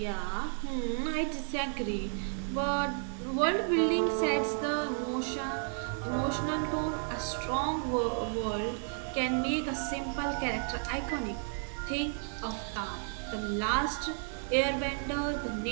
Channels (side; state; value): left; silent; 56 dB below the other